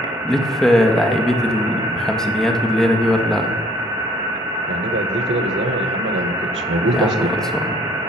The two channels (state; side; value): normal; both; correlation 0.59